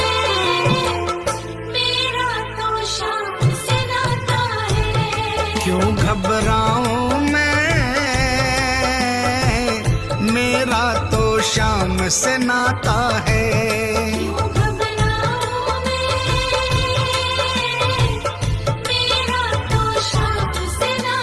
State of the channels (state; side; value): identical; both; correlation 1.00